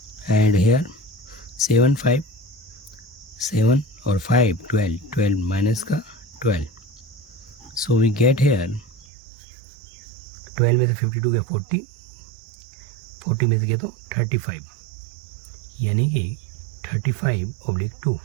and here 7 5 7 और 5 12 माइनस का 12, so we get here 12 में से 52 गया 40 में से गया तो 35, यानी कि 35/2।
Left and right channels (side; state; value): left; drops out; at 9.1 s